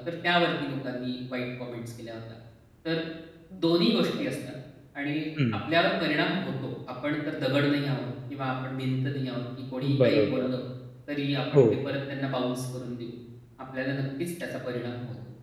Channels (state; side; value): identical; both; correlation 1.00